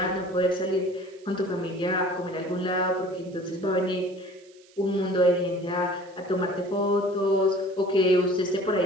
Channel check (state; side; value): noise; right; hiss, 28 dB below the sound